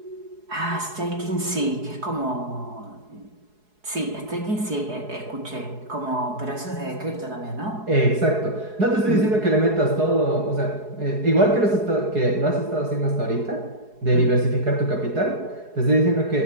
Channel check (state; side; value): late; left; 4.7 ms